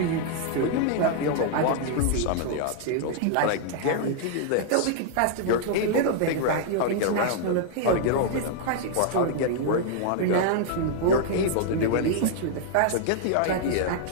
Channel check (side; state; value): both; different; correlation -0.01